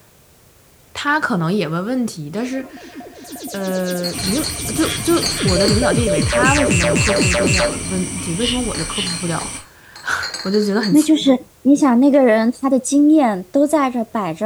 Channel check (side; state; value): both; identical; correlation 1.00